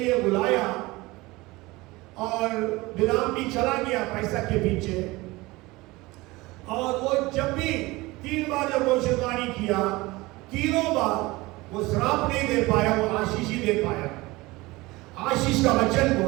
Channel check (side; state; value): left; quieter; 21.3 dB